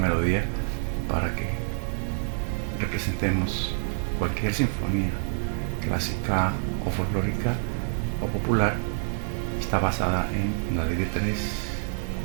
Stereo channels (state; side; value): silent; left; digital silence